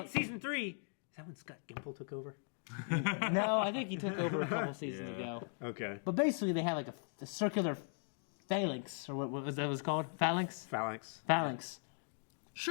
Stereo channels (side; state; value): right; silent; 52 dB below the other